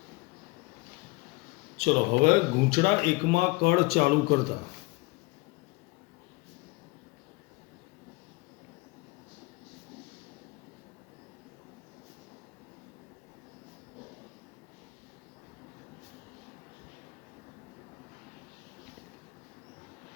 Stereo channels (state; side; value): quieter; right; 23.8 dB